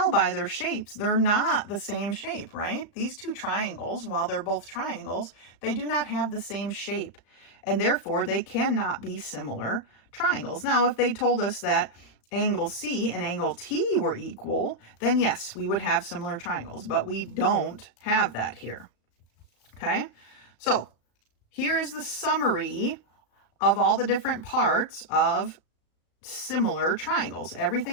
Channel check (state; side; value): late; right; 35 ms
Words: by their shapes, they're not the same shape, right? These two triangles, while they're both triangles, they do not have the same shape, and therefore they cannot be similar triangles. Now, if they told us that angle C and angle T were equal, then yes, we would have similar triangles, but we don't have that here, okay? So here is the summary of all the different parts of similar triangles,